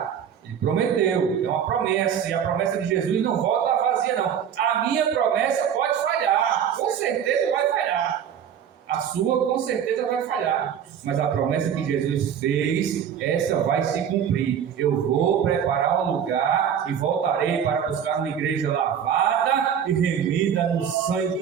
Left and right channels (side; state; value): left; quieter; 8.4 dB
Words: Ele prometeu, é uma promessa, e a promessa de Jesus não volta vazia não. A minha promessa pode falhar, com certeza vai falhar. A sua com certeza vai falhar, mas a promessa que Jesus fez, essa vai se cumprir. Eu vou preparar um lugar e voltarei para buscar uma igreja lavada e remida no